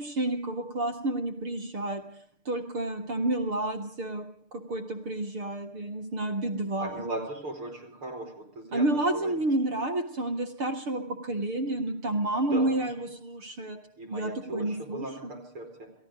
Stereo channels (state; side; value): late; left; 6.7 ms